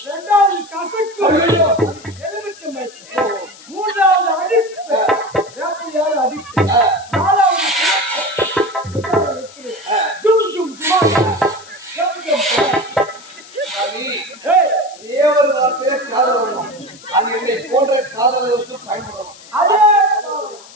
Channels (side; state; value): left; noise; hiss, 20 dB below the sound